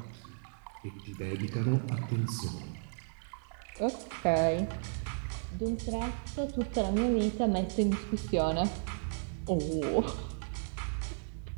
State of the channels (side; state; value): left; silent; digital silence